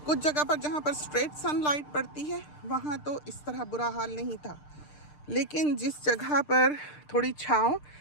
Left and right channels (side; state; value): right; late; 6.7 ms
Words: कुछ जगह पर जहाँ पर स्ट्रेट सनलाइट पड़ती है वहाँ तो इस तरह बुरा हाल नहीं था, लेकिन जिस जगह पर थोड़ी छाँव